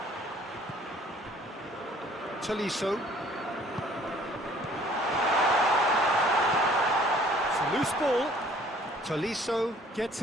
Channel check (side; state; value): both; normal; correlation 0.56